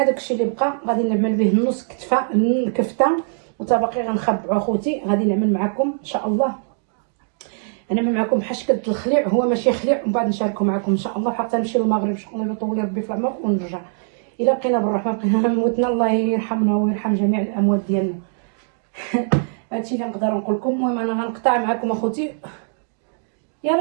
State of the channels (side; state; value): left; silent; digital silence